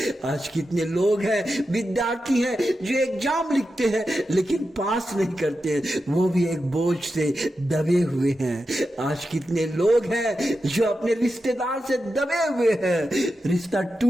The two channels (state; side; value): normal; both; correlation 0.90